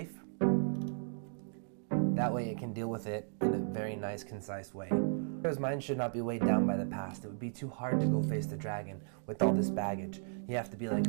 That way it can deal with it in a very nice, concise way. Because mind should not be weighed down by the past. It would be too hard to go face the dragon with all this baggage. You have to be like,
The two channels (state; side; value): silent; left; digital silence